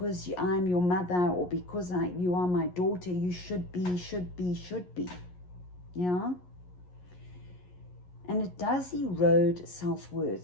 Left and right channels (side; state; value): right; late; 11 ms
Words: I'm your mother, or because you are my daughter, you should be. Yeah? And it does erode